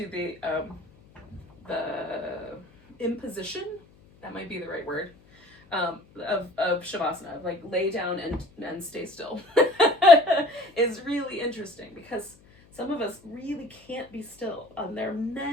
the imposition, that might be the right word, of Shavasana, like lay down and stay still, is really interesting because some of us really can't be still. There are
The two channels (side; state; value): left; noise; hum, 28 dB below the sound